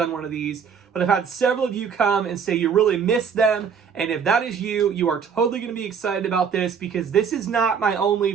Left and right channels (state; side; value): quieter; left; 6.6 dB